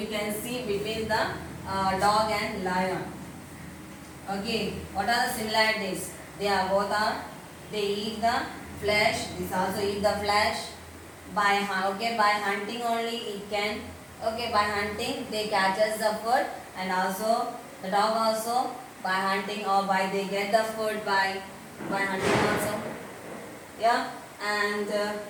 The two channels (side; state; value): both; identical; correlation 1.00